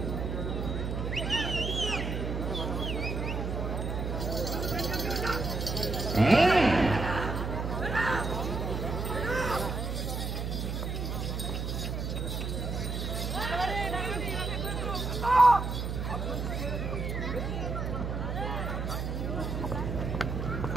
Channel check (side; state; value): right; noise; hum, 2 dB below the sound